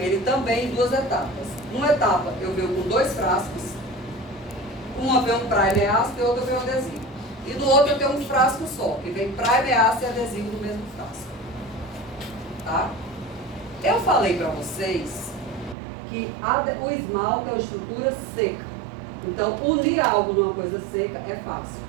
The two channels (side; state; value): left; drops out; at 15.8 s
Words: também em 2 etapas. Uma etapa eu venho com 2 frascos, uma vem um primer ácido e outra vem um adesivo. E no outro eu tenho um frasco só, que vem primer ácido e adesivo no mesmo frasco. Tá? Eu falei para vocês que o esmalte é uma estrutura seca. Então, unir algo numa coisa seca é fácil.